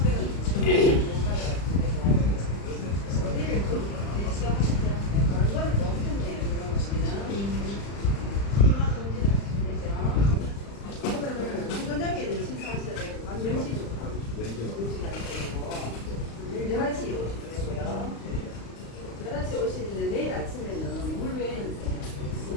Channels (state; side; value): late; right; 35 ms